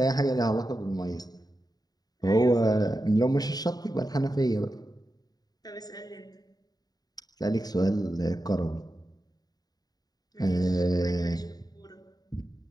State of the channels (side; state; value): right; late; 0.19 ms